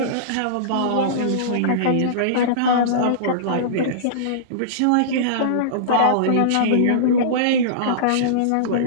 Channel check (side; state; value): both; different; correlation -0.03